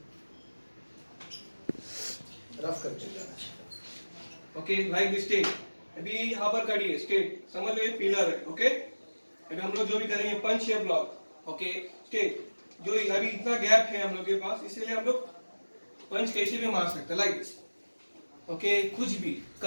रफ करके जाना चाहिए ओके लाइक दिस स्टेट अभी यहाँ पर खड़ी है स्टेट समझ लो ये पिलर है ओके अभी हम लोग जो भी करेंगे पंच या ब्लॉक ओके स्टेट जो अभी इतना गैप है हम लोग के पास इसीलिए हम लोग पंच कैसे भी मार सकते हैं लाइक दिस ओके कुछ भी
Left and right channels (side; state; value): both; inverted; correlation -1.00